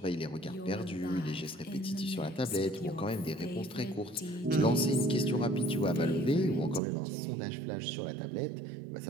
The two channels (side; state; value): left; drops out; at 6.8 s